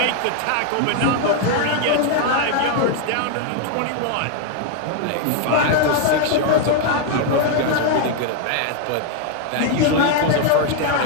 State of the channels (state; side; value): different; both; correlation 0.00